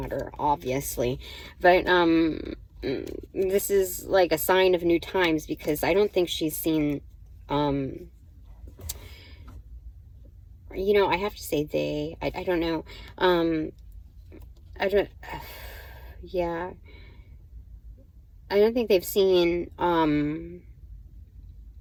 obviously. But this is like a sign of new times, because I don't think she's seen, you know, I have to say they, I don't know, yeah, I don't think they've seen,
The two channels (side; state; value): both; identical; correlation 1.00